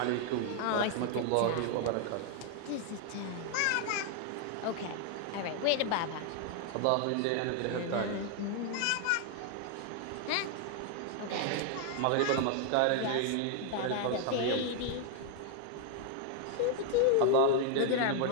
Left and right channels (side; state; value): both; different; correlation 0.00